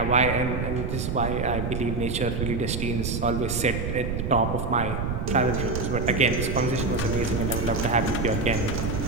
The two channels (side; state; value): right; noise; rumble, 2 dB below the sound